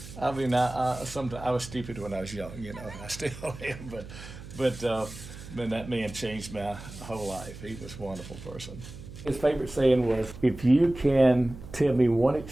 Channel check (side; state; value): right; noise; hum, 14 dB below the sound